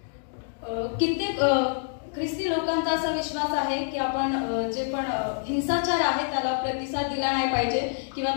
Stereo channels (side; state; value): right; silent; digital silence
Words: कित्येक ख्रिस्ती लोकांचा असा विश्वास आहे की आपण जे पण हिंसाचार आहे त्याला प्रतिसाद दिला नाही पाहिजे किंवा